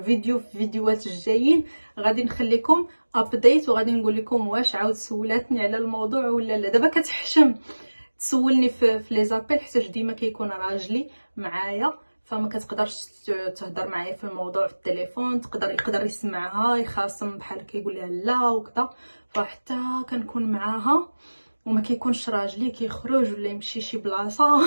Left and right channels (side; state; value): both; inverted; correlation -1.00